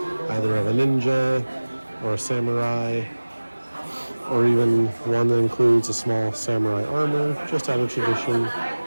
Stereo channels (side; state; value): both; inverted; correlation -1.00